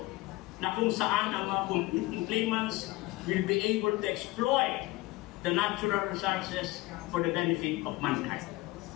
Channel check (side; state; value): right; quieter; 20.2 dB